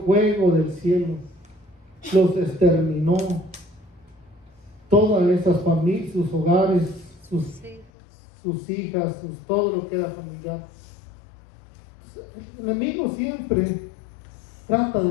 fuego del cielo, los exterminó, todas esas familias, sus hogares, sus hijas, todo lo que era familiar, El enemigo siempre trata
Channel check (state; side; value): drops out; right; at 7.9 s